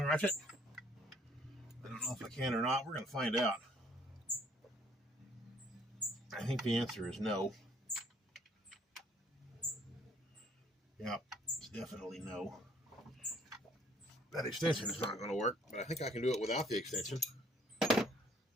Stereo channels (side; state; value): both; normal; correlation 0.62